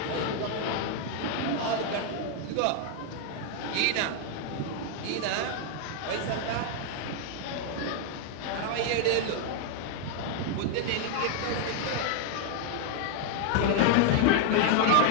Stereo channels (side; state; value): both; different; correlation 0.00